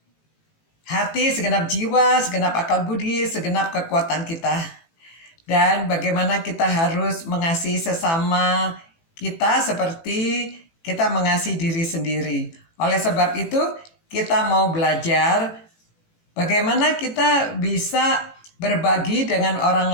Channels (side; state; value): right; late; 18 ms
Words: hati, segenap jiwa, segenap akal budi, segenap kekuatan kita. Dan bagaimana kita harus mengasihi sesama kita seperti kita mengasihi diri sendiri. Oleh sebab itu, kita mau belajar bagaimana kita bisa berbagi dengan orang